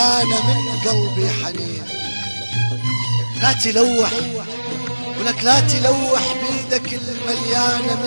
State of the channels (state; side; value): inverted; both; correlation -1.00